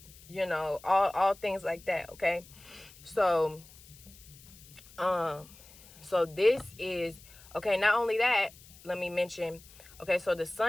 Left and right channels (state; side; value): noise; left; hiss, 22 dB below the sound